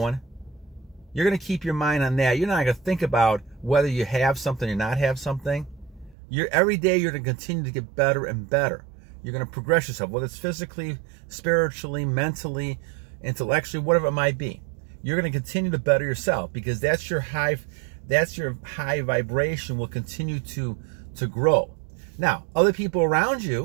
You're going to keep your mind on that. You're not going to think about whether you have something or not have something. Every day you're going to continue to get better and better. You're going to progress yourself, whether it's physically, spiritually, mentally, intellectually, whatever it might be. You're going to continue to better yourself because that's your high vibration will continue to grow. Now, other people around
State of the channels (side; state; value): left; drops out; at 6.2 s